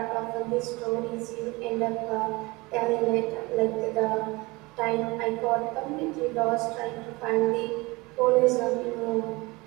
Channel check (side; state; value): left; quieter; 23.5 dB